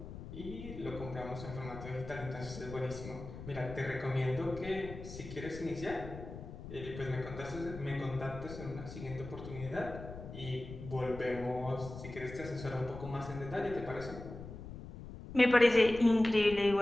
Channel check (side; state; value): left; noise; rumble, 11 dB below the sound